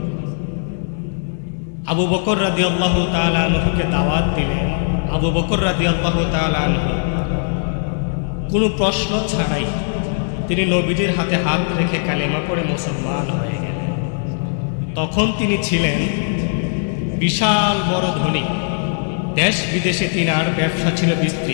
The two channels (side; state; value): right; silent; digital silence